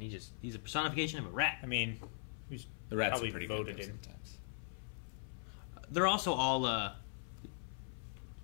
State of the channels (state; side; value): silent; right; 51 dB below the other